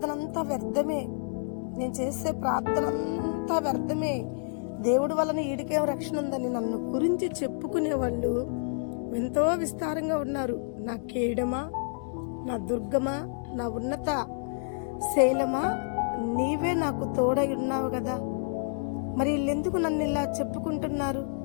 అంతా వ్యర్థమే, నేను చేసే ప్రార్థన అంతా వ్యర్థమే, దేవుడి వలన ఈడికేం రక్షణ ఉందని నన్ను గురించి చెప్పుకునేవాళ్ళు ఎంతో విస్తారంగా ఉన్నారు. నా కేడమా, నా దుర్గమా, నా ఉన్నత శైలమా, నీవే నాకు తోడై ఉన్నావు కదా. మరి వీళ్ళెందుకు నన్ను ఇలా చెప్పుకుంటున్నారు?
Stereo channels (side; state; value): right; silent; digital silence